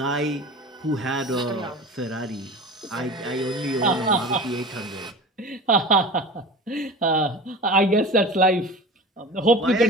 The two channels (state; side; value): normal; both; correlation 0.35